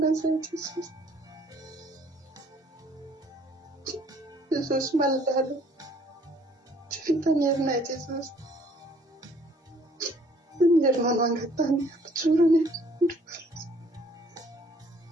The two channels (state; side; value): normal; both; correlation 0.60